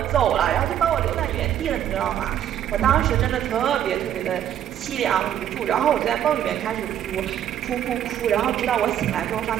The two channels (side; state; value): left; quieter; 10.6 dB